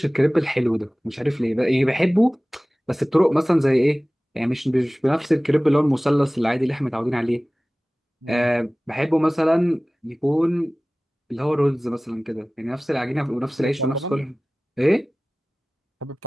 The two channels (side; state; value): both; normal; correlation 0.98